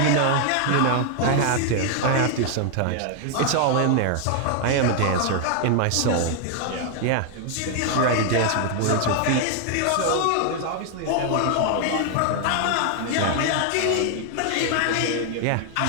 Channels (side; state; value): both; different; correlation 0.00